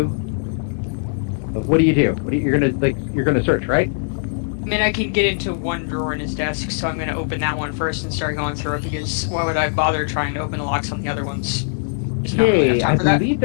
What do you do? You're gonna search, right? I mean, I can get into one drawer in his desk, so I'm gonna open that one first and start going through it, because why would I bother trying to open the locks on the other ones? There's not really enough time for that. Believe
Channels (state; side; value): silent; right; 65 dB below the other